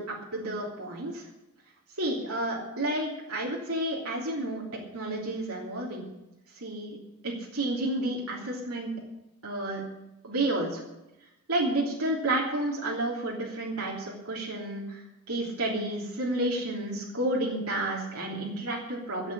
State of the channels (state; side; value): normal; both; correlation 0.13